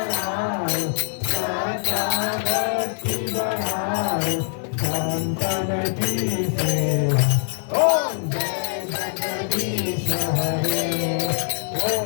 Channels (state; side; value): silent; right; 63 dB below the other